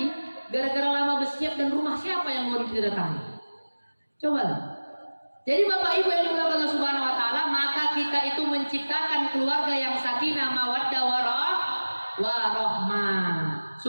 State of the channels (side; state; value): both; inverted; correlation -1.00